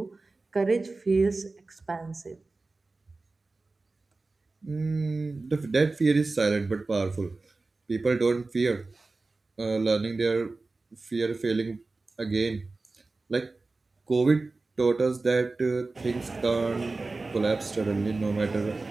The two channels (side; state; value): left; quieter; 3.5 dB